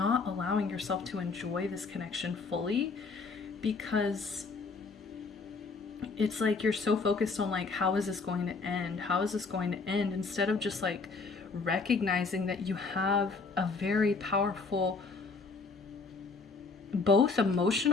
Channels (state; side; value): quieter; right; 4.3 dB